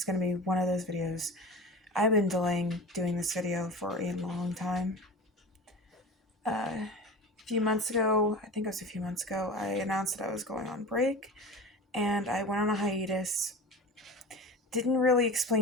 going to be one of those videos. I've been delaying doing this video for a long time. A few months ago, I think it was a few months ago, I announced that I was going on break and I went on a hiatus. Didn't really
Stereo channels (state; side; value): normal; both; correlation 0.33